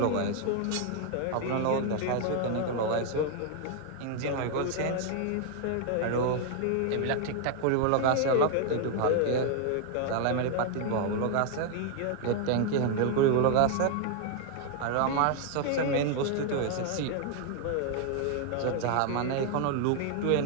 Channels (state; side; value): different; both; correlation 0.00